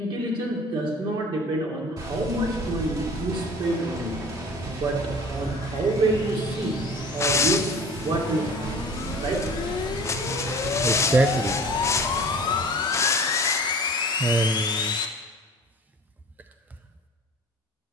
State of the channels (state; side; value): normal; both; correlation 0.43